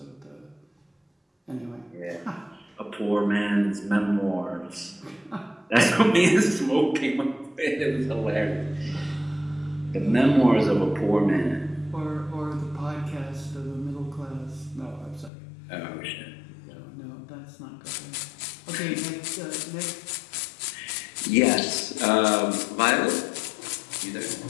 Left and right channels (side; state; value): right; drops out; at 15.3 s